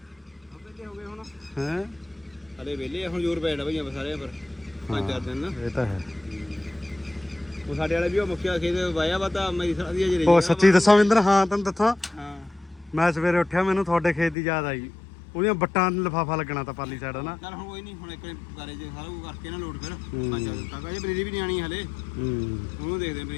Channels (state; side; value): drops out; right; at 14.4 s